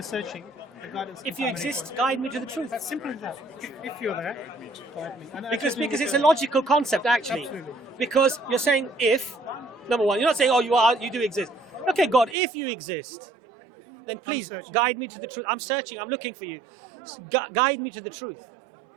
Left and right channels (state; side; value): drops out; left; at 12.4 s